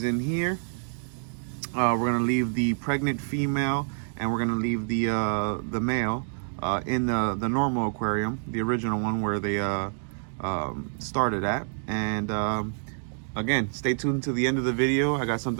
in here. We're gonna leave the pregnant female and we're gonna leave the male in the normal aquarium, the original one where they started at. And again, stay tuned to the end of the video. I got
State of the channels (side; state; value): left; silent; digital silence